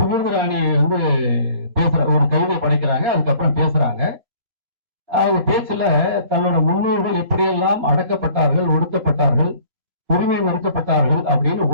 பேசுற ஒரு கவிதை படைக்கிறாங்க, அதுக்கப்புறம் பேசுறாங்க. அவங்க பேச்சுல தன்னோட முன்னோர்கள் எப்படியெல்லாம் அடக்கப்பட்டார்கள், ஒடுக்கப்பட்டார்கள், உரிமை மறுக்கப்பட்டார்கள் அப்படின்னு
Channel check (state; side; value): late; left; 3.0 ms